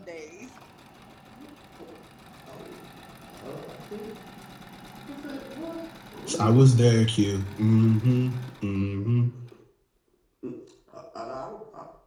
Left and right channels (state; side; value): identical; both; correlation 1.00